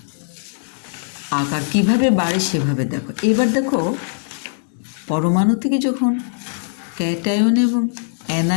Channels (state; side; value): silent; right; digital silence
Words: আকার কিভাবে বাড়ে সেভাবে দেখো। এবার দেখো পরমাণু থেকে যখন ক্যাটায়ন এবং